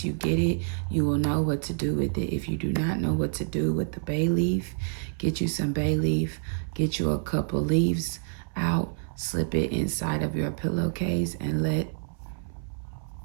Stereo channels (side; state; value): left; silent; 60 dB below the other